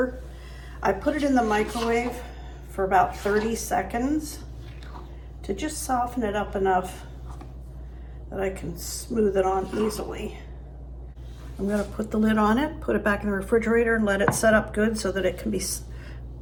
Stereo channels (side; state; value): both; identical; correlation 1.00